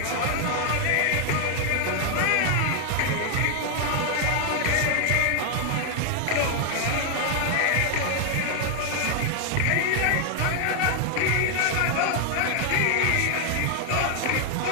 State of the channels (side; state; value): both; different; correlation 0.00